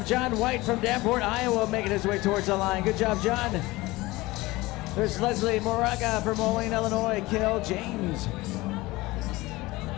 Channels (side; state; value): right; quieter; 20.4 dB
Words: John White from Davenport, Iowa, making his way towards the line. Good job, John. There's Leslie Moraga from Moline, Illinois. Kale James.